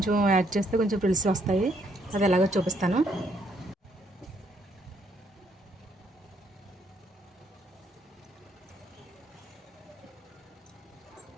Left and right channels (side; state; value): both; normal; correlation 0.71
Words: యాడ్ చేస్తే కొంచెం ఫ్రిల్స్ వస్తాయి. అది ఎలాగో చూపిస్తాను.